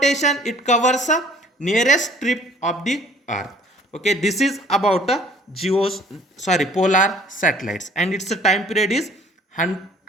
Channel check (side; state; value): both; normal; correlation 0.54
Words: it covers a nearest strip of the earth. Okay, this is about a polar satellites, and its time period is